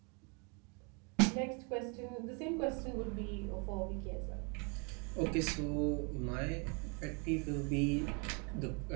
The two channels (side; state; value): left; quieter; 33.8 dB